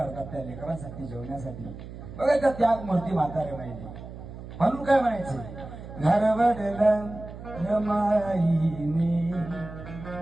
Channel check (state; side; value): noise; right; hum, 13 dB below the sound